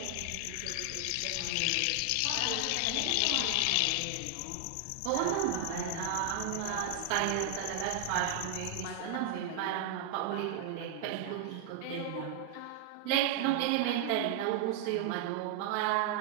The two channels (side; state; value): both; different; correlation 0.00